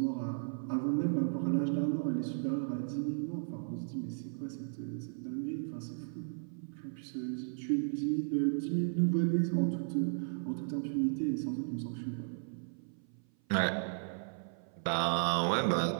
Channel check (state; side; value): silent; left; 54 dB below the other